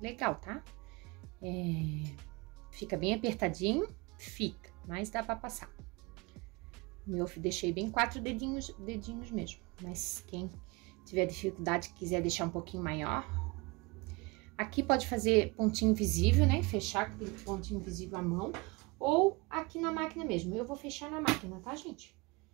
legal, tá? Fica bem apertadinho, fica, mas dá pra passar. Eu deixei bem 4 dedinhos mesmo, mas quem tiver dificuldade, quiser deixar um pouquinho maior. Aqui pode fazer pontinho invisível, né? Fechar com pontinho invisível à mão, ou aqui na máquina mesmo. Eu vou fechar na máquina, tá, gente?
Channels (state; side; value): quieter; left; 25.7 dB